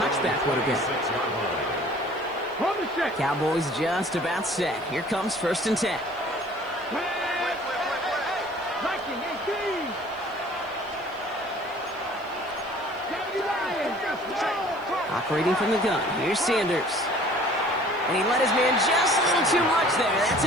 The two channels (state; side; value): noise; right; hiss, 29 dB below the sound